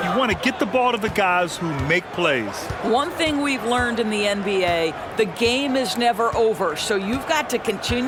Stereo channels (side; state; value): both; identical; correlation 1.00